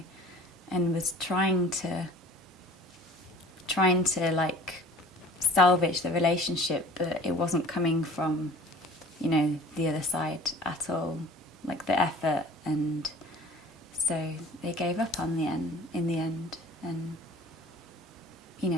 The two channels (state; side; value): normal; both; correlation 0.46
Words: and was trying to like salvage the relationship, but it wasn't coming from, you know, the other side at all, like the effort. And so they gave up in the end, and, you